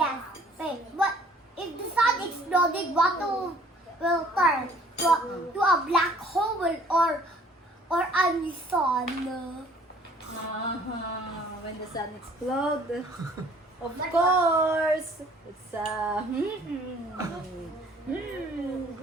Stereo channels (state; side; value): normal; both; correlation 0.56